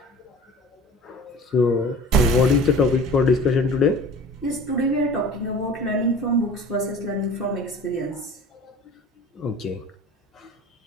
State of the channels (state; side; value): normal; both; correlation 0.41